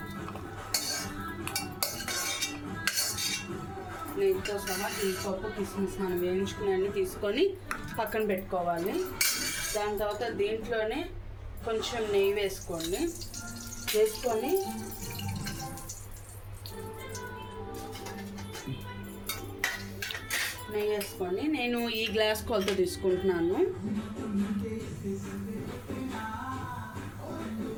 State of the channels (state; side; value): identical; both; correlation 1.00